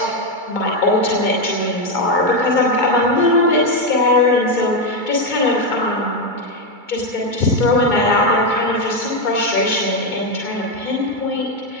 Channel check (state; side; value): late; right; 2.3 ms